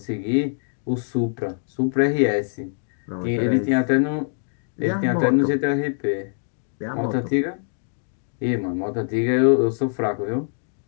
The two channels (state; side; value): silent; right; digital silence